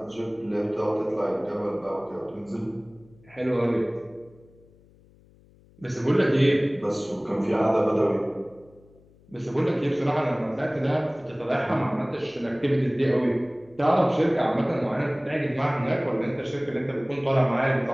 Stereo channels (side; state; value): left; noise; hum, 28 dB below the sound